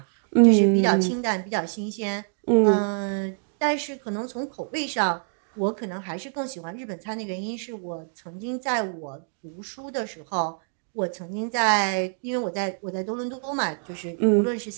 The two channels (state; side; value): silent; left; digital silence